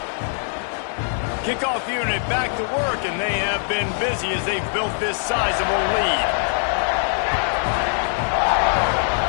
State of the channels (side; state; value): right; silent; 64 dB below the other